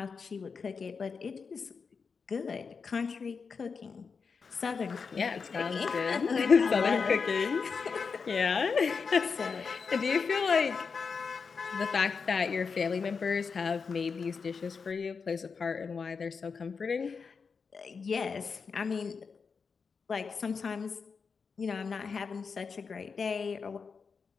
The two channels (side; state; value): right; quieter; 5.4 dB